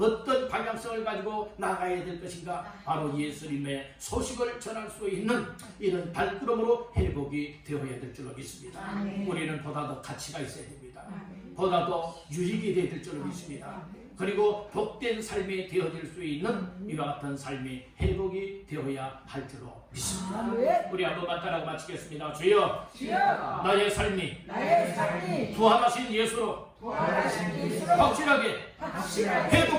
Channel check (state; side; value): identical; both; correlation 1.00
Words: 방향성을 가지고 나가야 될 것인가 바로 예수님의 소식을 전할 수 있는 이런 발걸음으로 회복이 되어야 될 줄로 믿습니다. 우리는 보다 더 가치가 있어야 됩니다. 보다 더 유익이 되어야 될 줄로 믿습니다. 그리고 복된 삶이 되어질 수 있는 이와 같은 삶이 회복이 되어야 할 줄로 믿습니다. 우리 한번만 따라 마치겠습니다. 주여, 나의 삶이 부활하신 예수로 확실하게